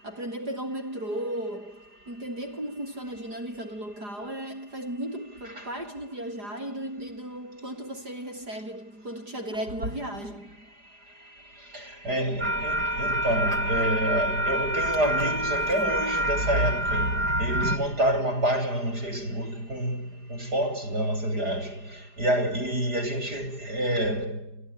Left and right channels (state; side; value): late; left; 4.9 ms